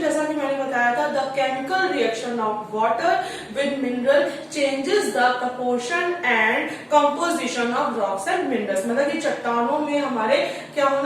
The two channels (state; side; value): identical; both; correlation 1.00